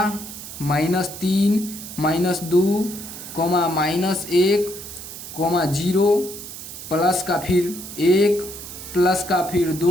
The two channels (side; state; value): right; noise; hiss, 11 dB below the sound